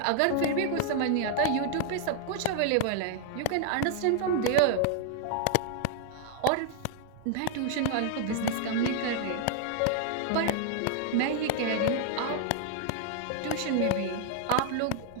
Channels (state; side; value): different; both; correlation -0.01